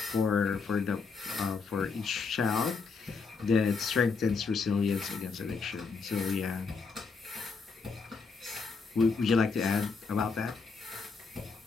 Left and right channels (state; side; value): quieter; right; 4.9 dB